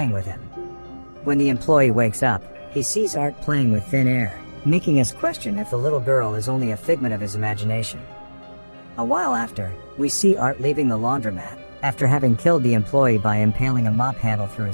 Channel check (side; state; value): both; inverted; correlation -1.00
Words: with him. When the employee wakes up, he sees Art playing with thin air, making us question if the little girl is only a figment of his imagination. A while after, we see Art leaving the laundromat, after having killed the employee by impaling a mop handle through